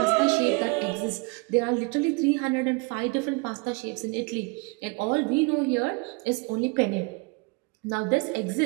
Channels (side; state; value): left; quieter; 29.5 dB